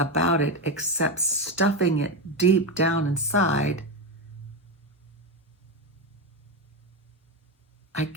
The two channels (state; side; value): normal; both; correlation 0.13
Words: it except stuffing it deep down inside, I